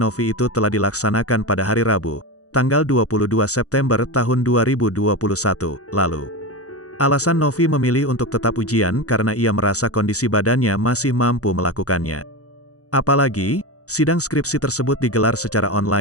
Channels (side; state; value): right; late; 0.66 ms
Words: itu telah dilaksanakan pada hari Rabu, tanggal 22 September tahun 2021, lalu. Alasan Novi memilih untuk tetap ujian karena ia merasa kondisi badannya masih mampu melakukannya. Apalagi, sidang skripsi tersebut digelar secara